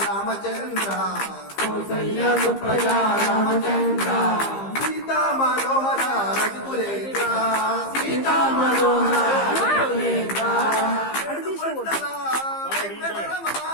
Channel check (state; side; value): late; right; 15 ms